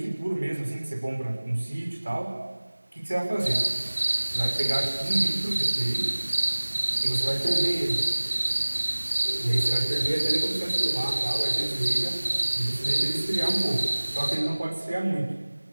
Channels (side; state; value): both; inverted; correlation -1.00